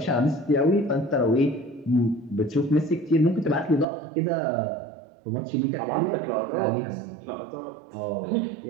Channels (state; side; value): drops out; left; at 3.9 s